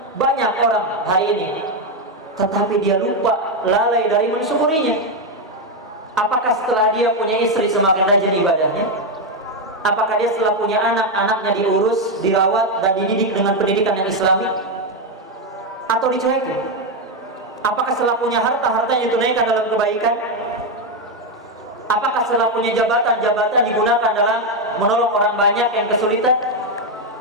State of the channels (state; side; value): normal; both; correlation 0.06